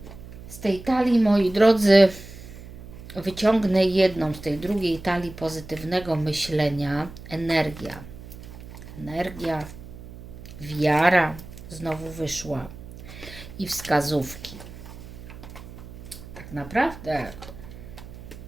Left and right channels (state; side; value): noise; right; hum, 15 dB below the sound